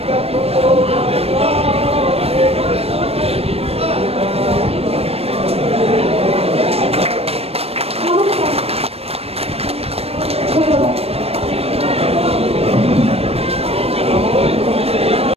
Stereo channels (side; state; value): left; late; 0.29 ms